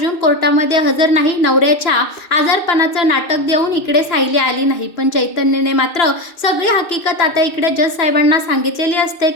कोर्टामध्ये हजर नाही. नवऱ्याच्या आजारपणाचं नाटक देऊन इकडे सायली आली नाही. पण चैतन्यने मात्र सगळी हकीकत आता इकडे जज साहेबांना सांगितलेली असते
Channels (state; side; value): late; right; 2.6 ms